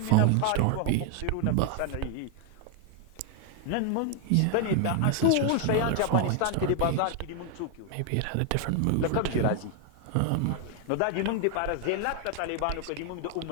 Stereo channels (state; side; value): different; both; correlation 0.00